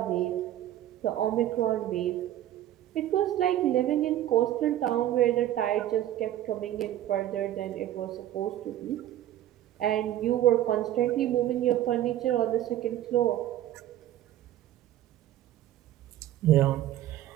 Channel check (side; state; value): left; quieter; 12.8 dB